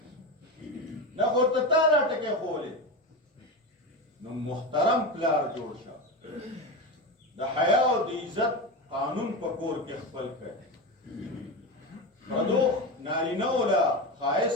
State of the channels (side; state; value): both; normal; correlation 0.20